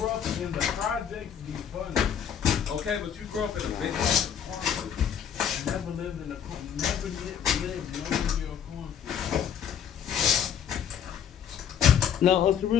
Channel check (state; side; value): quieter; right; 8.5 dB